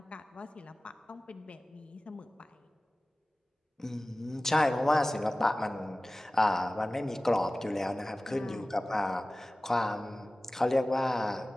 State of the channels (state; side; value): normal; both; correlation 0.97